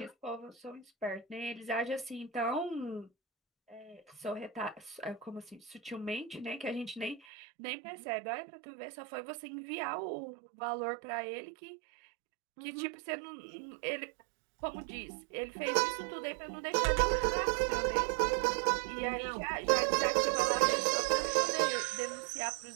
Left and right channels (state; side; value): drops out; left; at 7.2 s